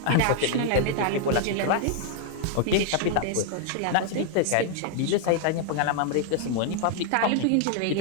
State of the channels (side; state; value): both; different; correlation 0.00